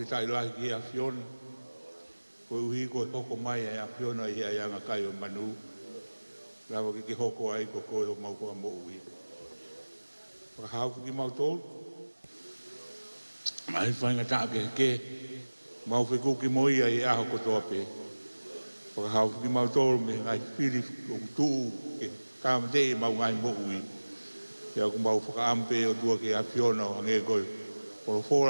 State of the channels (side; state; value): both; inverted; correlation -1.00